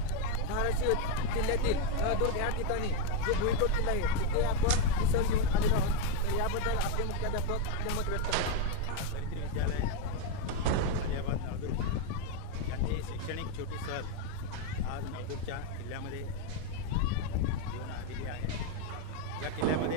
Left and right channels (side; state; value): both; different; correlation 0.02